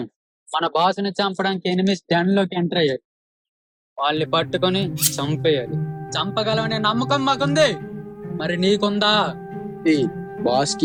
మన బాస్ ని చంపడానికి ఎనిమిస్ డెన్ లోకి ఎంటర్ అయ్యాడు. వాళ్ళని పట్టుకొని చంపేయాలి. చంపగలవనే నమ్మకం మాకుంది, మరి నీకుందా? బాస్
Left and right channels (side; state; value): both; identical; correlation 1.00